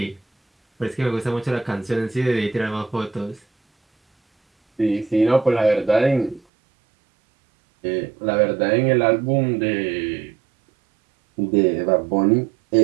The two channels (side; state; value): left; drops out; at 6.4 s